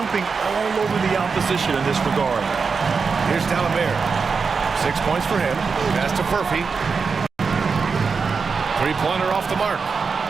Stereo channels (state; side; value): quieter; left; 5.2 dB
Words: all over the opposition in this regard. Here's D'Alembert. 6 points for him. Pass to Murphy. 3-pointer off the mark.